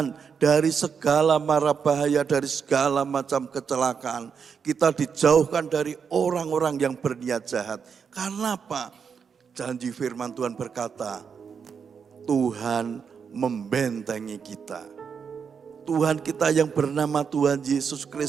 dari segala mara bahaya, dari segala macam kecelakaan. Kita dijauhkan dari orang-orang yang berniat jahat. Karena apa? Janji firman Tuhan berkata, Tuhan membentengi kita. Tuhan kita yang bernama Tuhan Yesus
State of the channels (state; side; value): quieter; left; 6.5 dB